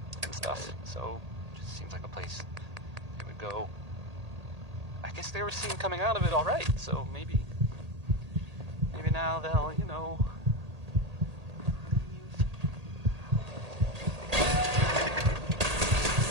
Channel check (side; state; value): left; late; 1.8 ms